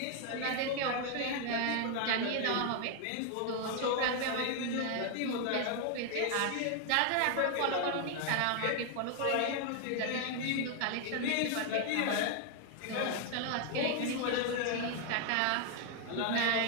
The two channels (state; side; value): different; both; correlation 0.00